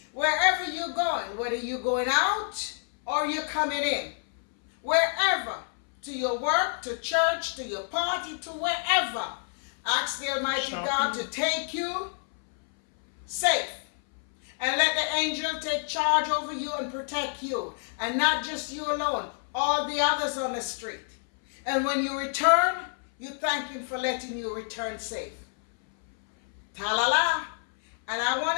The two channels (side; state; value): right; silent; 59 dB below the other